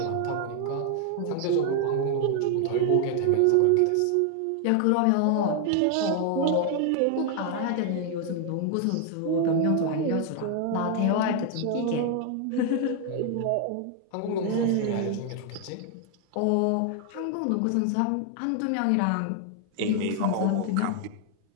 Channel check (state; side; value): different; both; correlation 0.00